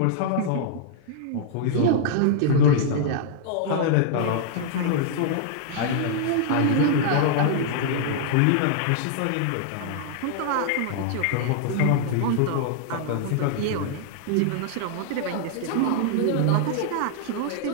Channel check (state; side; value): different; both; correlation -0.01